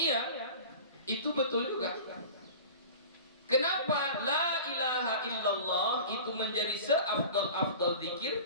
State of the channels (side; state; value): both; inverted; correlation -0.38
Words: itu betul juga. Kenapa la ilaha illallah itu menjadi seafdal zikir?